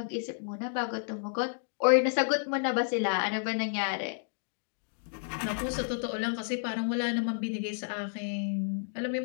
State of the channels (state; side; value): silent; right; digital silence